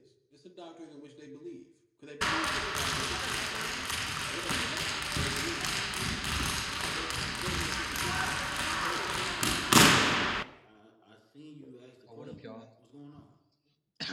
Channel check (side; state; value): both; identical; correlation 1.00